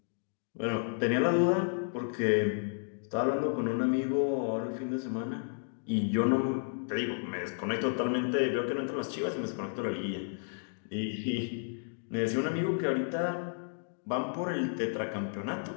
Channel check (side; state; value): right; silent; digital silence